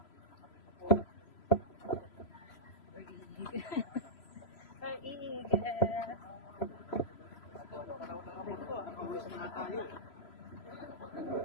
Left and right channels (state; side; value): late; right; 3.0 ms